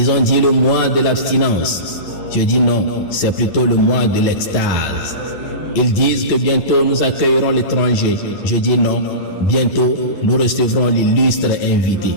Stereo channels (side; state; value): right; late; 10 ms